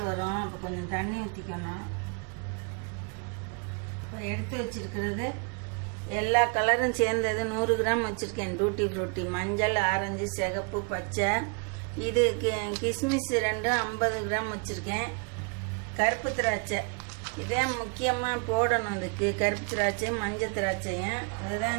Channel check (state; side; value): quieter; left; 35.9 dB